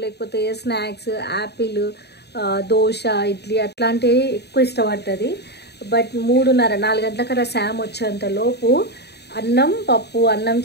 లేకపోతే స్నాక్స్, యాపిల్, దోశ, ఇడ్లీ అట్లాంటివి ఎక్కువ ఇష్టపడుతుంది. బట్ 3:30-4 గంటలకల్లా శామ్ వచ్చేంత లోపు అన్నం పప్పు, అన్నం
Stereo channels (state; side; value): late; right; 0.48 ms